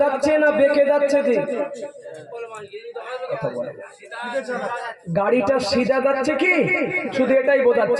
যাচ্ছে না বেঁকে যাচ্ছে? যে গাড়িটা সিধা যাচ্ছে কি, শুধু এটাই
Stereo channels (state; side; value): identical; both; correlation 1.00